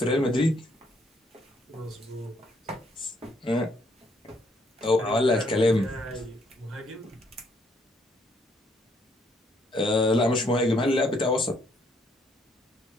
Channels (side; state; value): both; normal; correlation 0.69